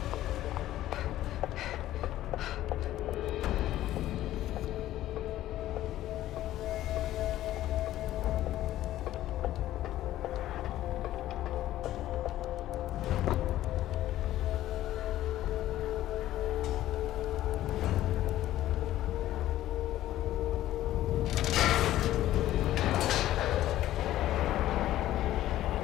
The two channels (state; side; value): quieter; right; 13.9 dB